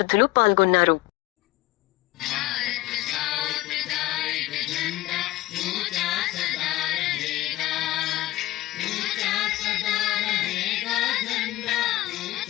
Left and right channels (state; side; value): quieter; right; 17.5 dB